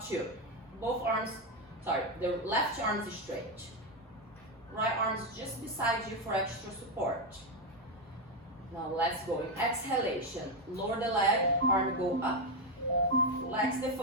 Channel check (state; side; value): normal; both; correlation 0.06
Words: 2. Both arms, the left arm is straight. Right arm is just beside you for extra support. Now let's go in exhalation. Lower the leg, arm go up. Flex the